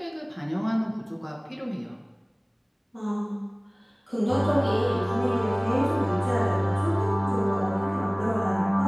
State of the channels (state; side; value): identical; both; correlation 1.00